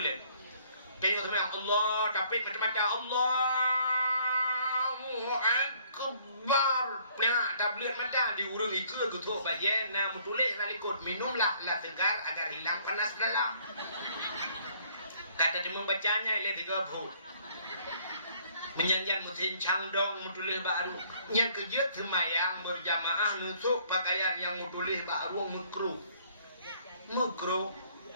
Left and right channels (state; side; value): inverted; both; correlation -0.61